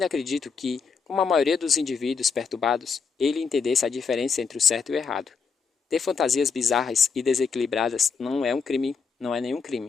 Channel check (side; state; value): right; quieter; 5.6 dB